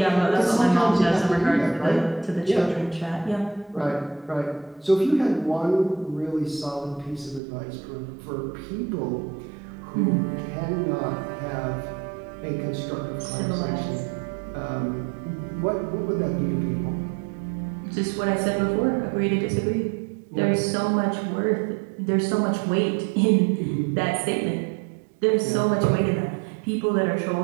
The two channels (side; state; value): left; drops out; at 7.4 s